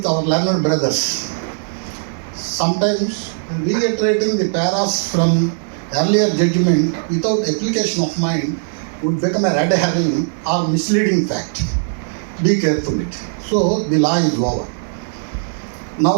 our learned brothers. Sometimes reiterating the paras from earlier judgment without application of mind would become a red herring or misleading fact. Be careful it. So the law is over.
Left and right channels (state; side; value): silent; left; digital silence